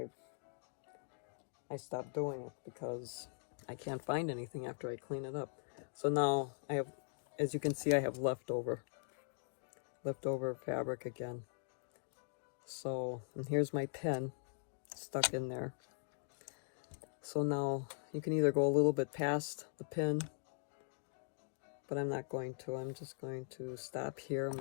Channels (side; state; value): right; silent; digital silence